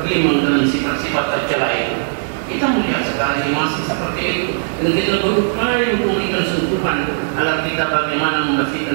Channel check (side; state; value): left; silent; 67 dB below the other